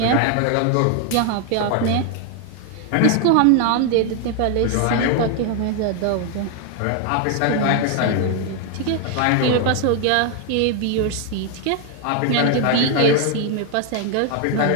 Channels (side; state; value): both; different; correlation 0.00